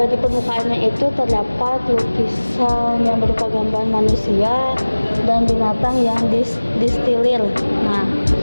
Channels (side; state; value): both; inverted; correlation -1.00